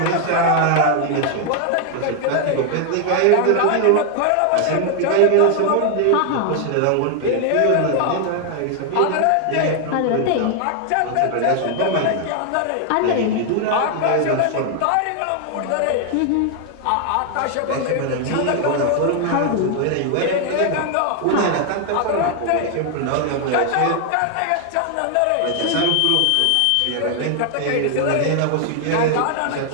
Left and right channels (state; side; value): different; both; correlation 0.00